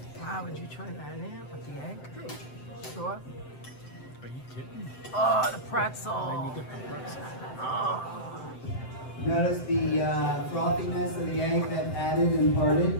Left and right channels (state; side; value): late; right; 7.8 ms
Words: Wow, would you try that in with the egg? Sure. Are you kidding? Oh, the pretzel. And you get the pretzel. Oh. Notice the frothiness of the egg that added and